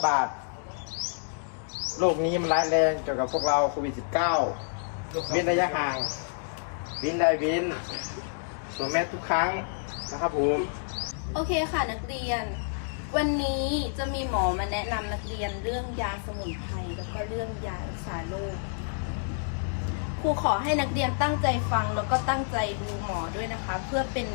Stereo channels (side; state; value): right; silent; digital silence